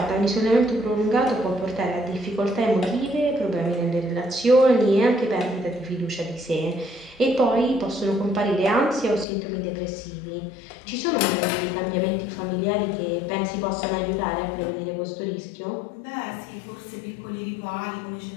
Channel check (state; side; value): drops out; right; at 9.2 s